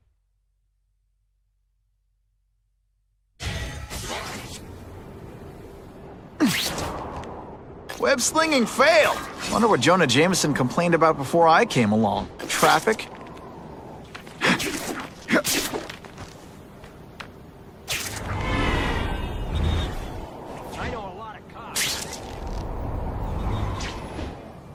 Web slinging failed. Wonder what Jonah Jameson complained about before I came along. Traffic? I know a lot of cops.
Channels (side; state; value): both; identical; correlation 1.00